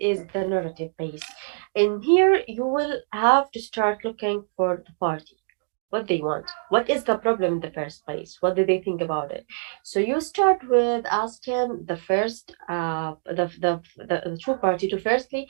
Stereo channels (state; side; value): silent; left; digital silence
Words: the narrative phase. In here, you will have to start looking for the party, what they want, what is the problem in the first place, what do they think about it. So you start with asking the first the true party to firstly